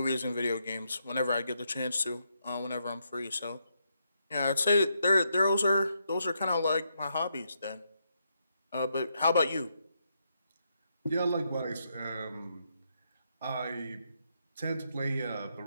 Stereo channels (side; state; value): both; inverted; correlation -0.79